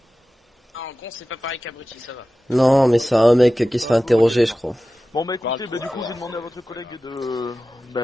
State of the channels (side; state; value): both; normal; correlation 0.95